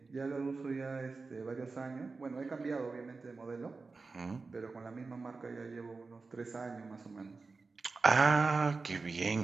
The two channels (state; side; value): quieter; left; 4.0 dB